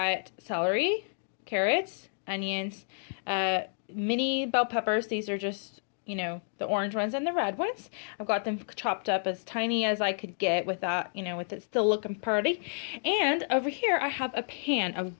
celery, carrots, onions, mini bell peppers. These are just, you know, the orange ones and the red ones. I've got them chopped up as tiny as I could get without, you know, with it still looking pretty. And over here I have a pan of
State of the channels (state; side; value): silent; right; digital silence